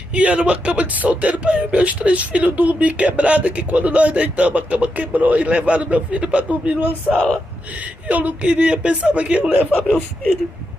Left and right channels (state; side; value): normal; both; correlation 0.85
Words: E era uma cama de solteiro para eu e meus 3 filhos dormir quebrada, que quando nós deitamos a cama quebrou e levaram meu filho para dormir numa sala. Eu não queria, pensava que iam levar meu filho.